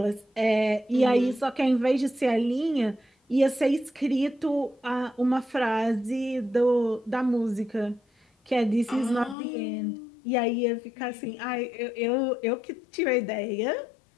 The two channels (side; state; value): right; drops out; at 9.3 s